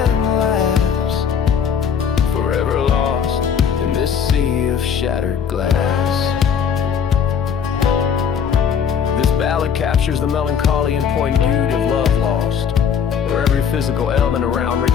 laughs, forever lost in this sea of shattered glass. This ballad captures the melancholy and poignant beauty of love lost, where every physical element around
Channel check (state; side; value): quieter; right; 7.5 dB